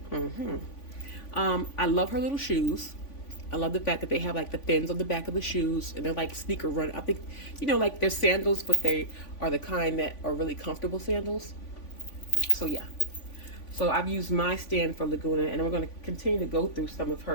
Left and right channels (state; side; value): late; right; 3.5 ms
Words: I love her little shoes. I love the fact that they have like the fins on the back of the shoes, and they're like sneaker run. I think, like they're sandals, but they are the kind that are really comfortable sandals. So yeah. So I've used my stand for Lagoona, and we're going to continue to go through some of